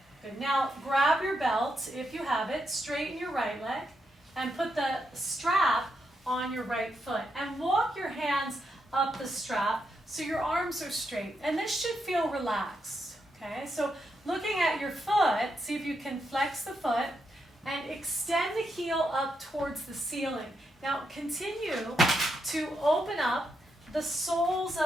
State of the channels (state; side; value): normal; both; correlation 0.82